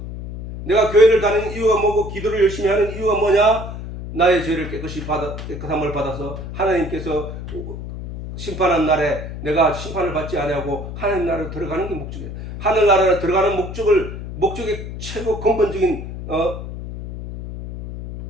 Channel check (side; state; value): left; noise; hum, 9 dB below the sound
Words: 내가 교회를 다니는 이유가 뭐고 기도를 열심히 하는 이유가 뭐냐? 나의 죄를 깨끗함을 받아서 하나님께서 심판한 날에 내가 심판을 받지 아니하고 하나님 나라로 들어가는 게 목적이에요. 하늘 나라로 들어가는 목적의 최고 근본적인